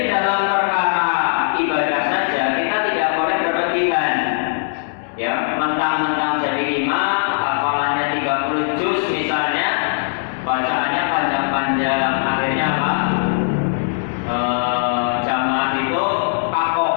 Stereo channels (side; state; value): right; silent; 66 dB below the other